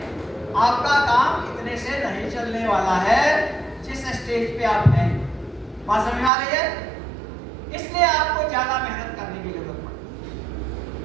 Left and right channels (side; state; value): left; drops out; at 6.3 s